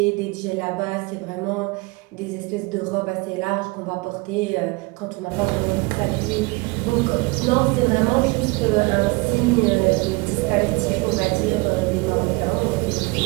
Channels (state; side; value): quieter; left; 26.0 dB